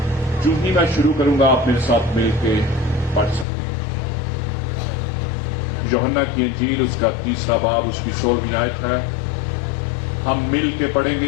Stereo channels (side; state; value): right; drops out; at 3.5 s